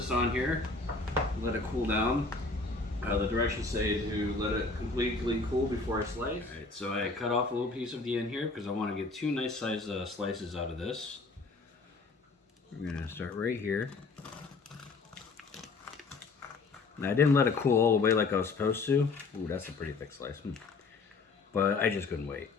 on here, let it cool down. The directions say to let it completely cool before I slice. All right, so I cut off a little piece of the end here because I want to get two nice size slices out of this. We're gonna start right here. Now I didn't let it cool all the way like I was supposed to. Ooh, that's a pretty thick slice. But I just couldn't wait,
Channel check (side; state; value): right; quieter; 3.9 dB